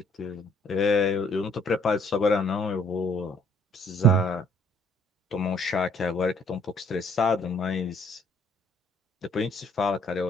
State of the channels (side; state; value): both; normal; correlation 0.62